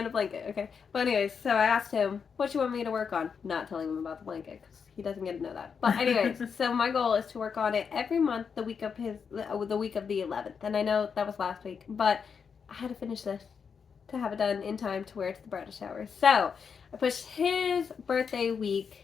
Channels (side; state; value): right; quieter; 6.3 dB